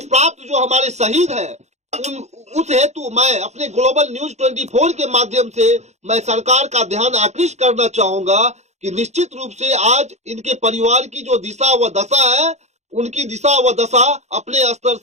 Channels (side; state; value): left; late; 0.33 ms